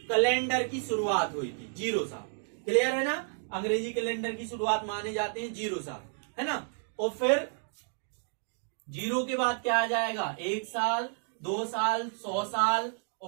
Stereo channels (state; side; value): silent; left; 57 dB below the other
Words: कैलेंडर की शुरुआत हुई थी। 0 साल, क्लियर है ना। अंग्रेजी कैलेंडर की शुरुआत माने जाते हैं 0 साल, है ना। और फिर 0 के बाद क्या आ जाएगा? 1 साल, 2 साल, 100 साल